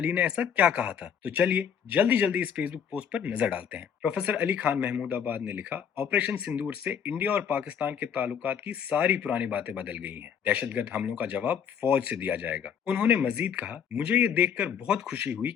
ने ऐसा क्या कहा था, तो चलिए जल्दी जल्दी इस फेसबुक पोस्ट पर नजर डालते हैं। प्रोफेसर अली खान महमूदाबाद ने लिखा, ऑपरेशन सिंदूर से इंडिया और पाकिस्तान के ताल्लुकात की सारी पुरानी बातें बदल गई हैं। दहशतगर्द हमलों का जवाब फौज से दिया जाएगा। उन्होंने मजीद कहा, मुझे ये देखकर बहुत खुशी हुई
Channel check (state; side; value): quieter; right; 7.7 dB